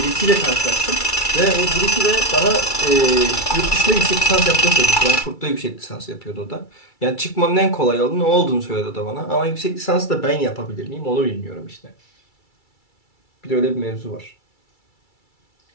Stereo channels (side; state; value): right; late; 2.3 ms